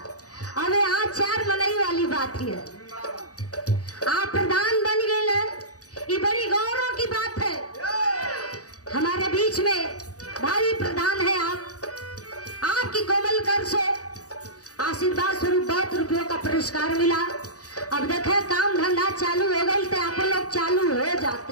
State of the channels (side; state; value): right; late; 0.67 ms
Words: अबे आज 4 मनाई वाली बात है। आप प्रधान बन गए, ये बड़ी गौरव की बात है। हमारे बीच में भाई प्रधान है आप, आपकी कोमल कर से आशीर्वाद स्वरूप 2 रुपयों का पुरस्कार मिला। अब देखे काम धंधा चालू हो गई तो आप लोग चालू हो